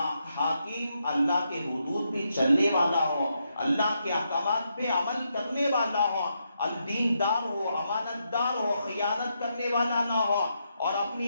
حاکم اللہ کے حدود پہ چلنے والا ہو، اللہ کے احکامات پہ عمل کرنے والا ہو، الدیندار ہو، امانت دار ہو، خیانت کرنے والا نہ ہو، اور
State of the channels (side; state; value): both; inverted; correlation -0.81